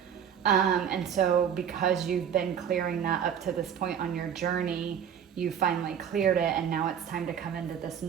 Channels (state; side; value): quieter; left; 8.4 dB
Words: And so because you've been clearing that up to this point on your journey, you finally cleared it, and now it's time to come into this